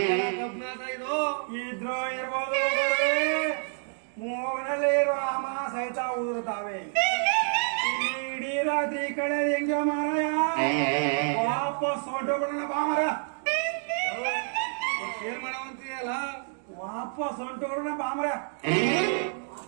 ಇದು ಇದ್ರು ಇರ್ಬೋದು. ಮೂಗನಲ್ಲಿ ಇರುವ ಅಮ ಸಹಿತ ಉದುರುತ್ತಾವೆ. ಇಡೀ ರಾತ್ರಿ ಕಡೆ ಹೆಂಗ ಮಾರಾಯ ವಾಪಸ್ ಹೊಂಟೋಗ್ಬಿಡೋಣ ಬಾ ಮರ. ಏನ್ ಮಾಡವಂತೀಯಲ್ಲ ವಾಪಸ್ ಹೊಂಟೋಗ್ಬಿಡೋಣ ಬಾ ಮರ.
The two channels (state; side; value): silent; left; 59 dB below the other